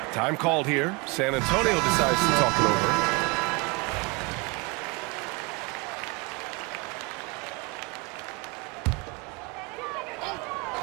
Time called here. San Antonio decides to talk it over.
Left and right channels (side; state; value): left; quieter; 27.5 dB